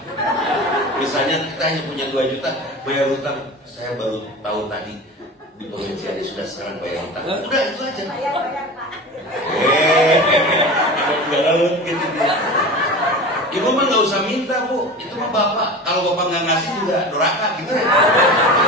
Misalnya kita hanya punya 2 juta bayar hutang. Saya baru tahu tadi di pengajiannya sudah sekarang bayar hutang. Udah itu aja. Gitu. Ibu mah nggak usah minta bu, itu mah bapak. Kalau bapak nggak ngasih juga doraka gitu.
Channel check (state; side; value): normal; both; correlation 0.32